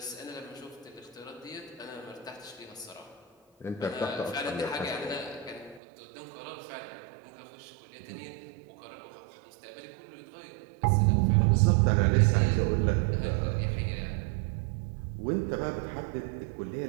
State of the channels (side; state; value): left; drops out; at 5.8 s